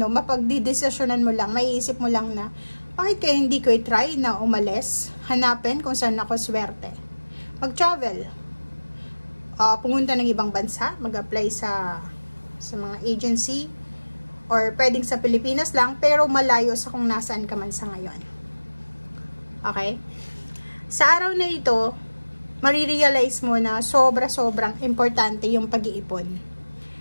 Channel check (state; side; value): inverted; both; correlation -1.00